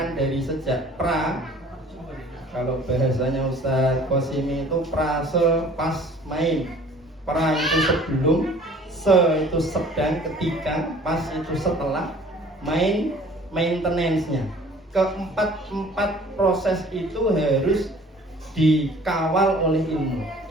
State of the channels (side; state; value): both; normal; correlation 0.51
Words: dari sejak kalau bahasanya Ustadz Qasimi itu prase, pas, main. Pra itu sebelum, se itu sedang, ketika, pas itu setelah, main maintenance-nya. Keempat proses itu harus dikawal oleh ilmu.